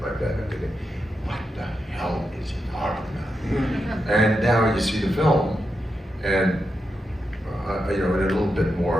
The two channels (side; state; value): both; normal; correlation 0.86